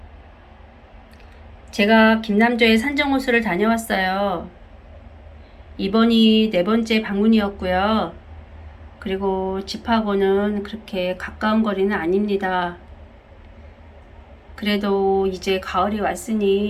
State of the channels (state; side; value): identical; both; correlation 1.00